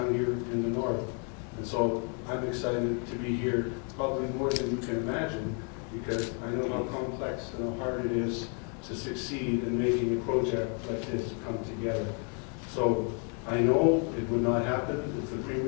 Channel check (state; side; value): quieter; right; 39.7 dB